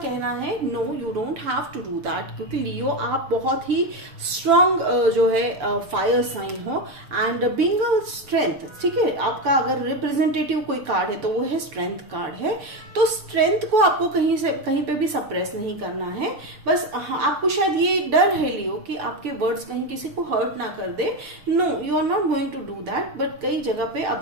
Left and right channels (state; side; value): late; left; 6.8 ms